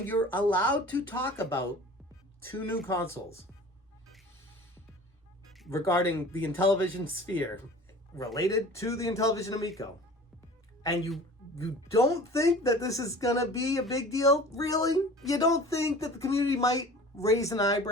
allowed to talk about 2 new consoles regarding the Intellivision sphere related to the Intellivision Amico, and you don't think that this is gonna be a big deal? Really? You don't think that the community might raise an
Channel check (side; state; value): both; normal; correlation 0.42